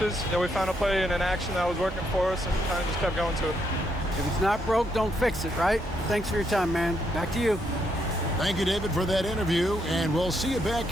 We found a play in an action that was working for us and kind of just kept going to it. If it's not broke, don't fix it, right? Thanks for your time, man. Back to you. Thank you, David, for that interview, and we'll see you back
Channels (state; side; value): normal; both; correlation 0.77